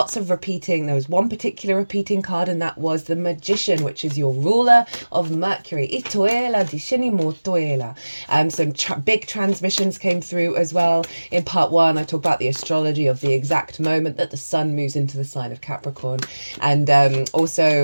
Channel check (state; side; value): inverted; both; correlation -1.00